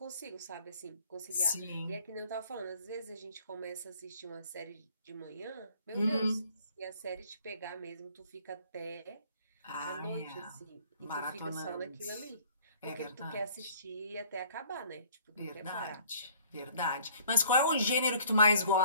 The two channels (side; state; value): both; inverted; correlation -0.56